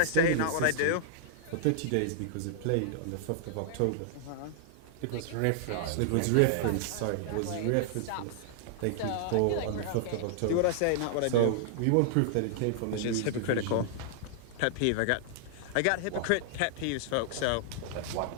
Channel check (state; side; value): different; both; correlation -0.01